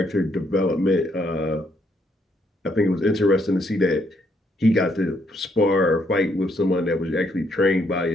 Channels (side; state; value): both; normal; correlation 0.73